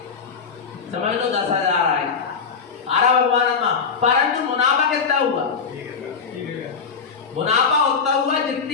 समझ लो 10,000 आए। आरा भगवान आत्मा, परंतु मुनाफा कितना हुआ? मुनाफा उतना हुआ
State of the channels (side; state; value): right; quieter; 5.7 dB